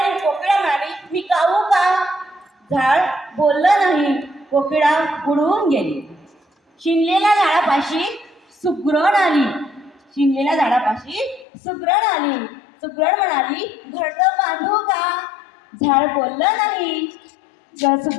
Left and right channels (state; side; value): drops out; right; at 11.5 s